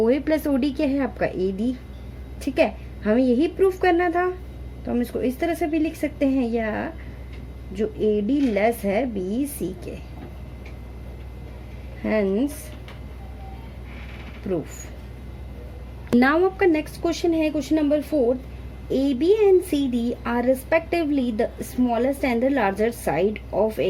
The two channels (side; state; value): both; identical; correlation 1.00